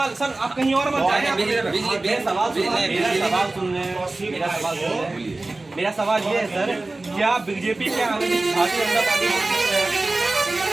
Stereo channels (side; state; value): left; quieter; 3.1 dB